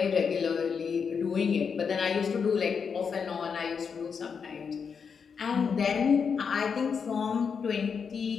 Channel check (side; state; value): right; quieter; 6.2 dB